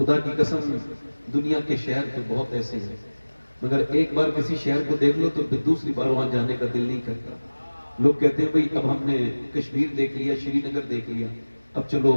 کی قسم دنیا کے شہر تو بہت ایسے ہیں، مگر ایک بار کسی شہر کو دیکھ لو تو پھر دوسری بار وہاں جانے کا دل نہیں کرتا۔ لوگ کہتے ہیں بھئی اب ہم نے کشمیر دیکھ لیا، شری نگر دیکھ لیا، اب چلو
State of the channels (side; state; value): both; inverted; correlation -1.00